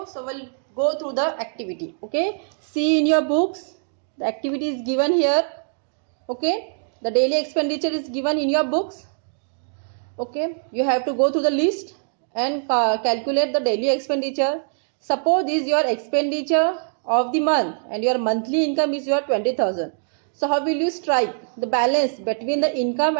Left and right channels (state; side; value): silent; left; digital silence